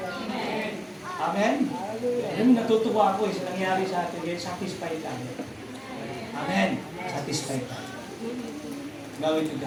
Amen? Alam, natutuwa ako sa nangyari sa atin, dahil satisfied tayo. Amen? Satisfied tayo. Gawin to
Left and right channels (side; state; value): both; identical; correlation 1.00